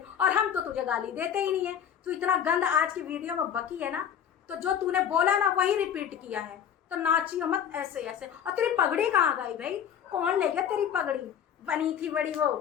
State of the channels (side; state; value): right; quieter; 8.8 dB